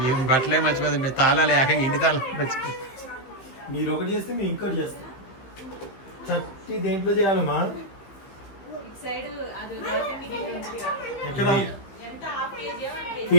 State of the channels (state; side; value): late; right; 15 ms